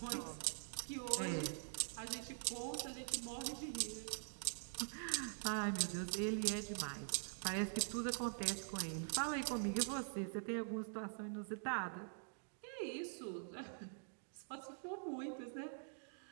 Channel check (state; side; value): silent; left; digital silence